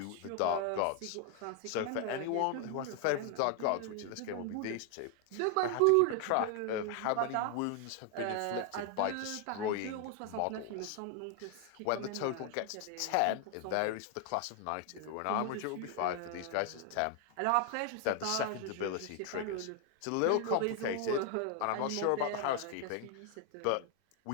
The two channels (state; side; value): different; both; correlation 0.01